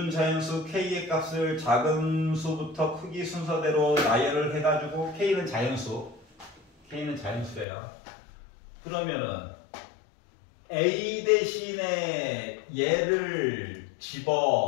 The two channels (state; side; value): drops out; right; at 7.7 s